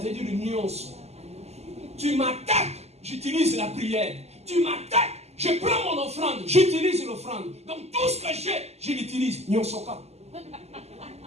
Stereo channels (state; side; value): late; left; 0.30 ms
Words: dire une nuance. Tu m'attaques, j'utilise la prière. Tu m'attaques, je prends mon offrande, j'utilise l'offrande. Donc tout ce que j'ai, je l'utilise. Nyonsoka.